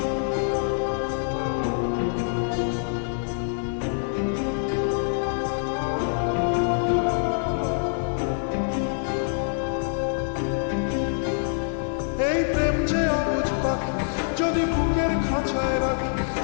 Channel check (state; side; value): silent; right; 62 dB below the other